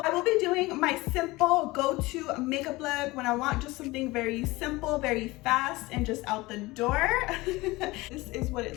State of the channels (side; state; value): right; quieter; 21.2 dB